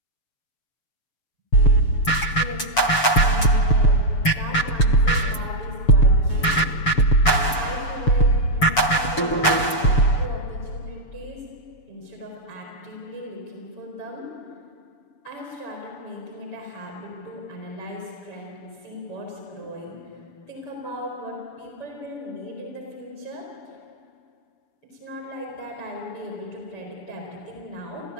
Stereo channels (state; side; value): late; right; 6.9 ms